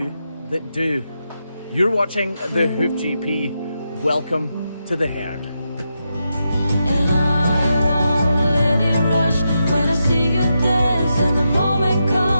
that do. You're watching the Hoof GP. Welcome to the herd. And I won't let it rush when I see you dance, and the moment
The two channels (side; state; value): both; inverted; correlation -0.85